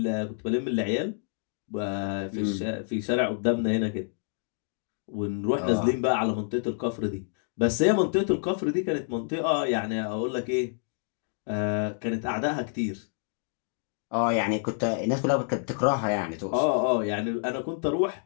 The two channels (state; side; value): silent; right; digital silence